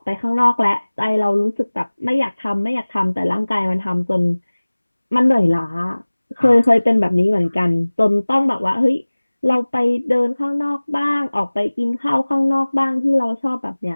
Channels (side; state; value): both; inverted; correlation -1.00